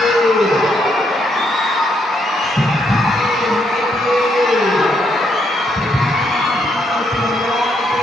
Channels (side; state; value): both; normal; correlation 0.75